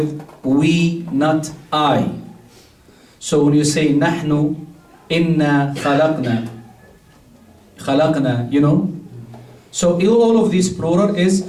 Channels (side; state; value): both; identical; correlation 1.00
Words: we, not I. So when you say نحن, إنا, خلقنا, you know. So all of these plural is